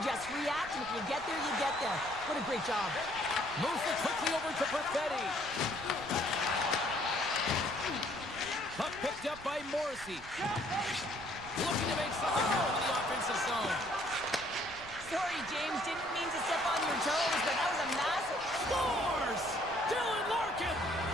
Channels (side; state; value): right; noise; rumble, 17 dB below the sound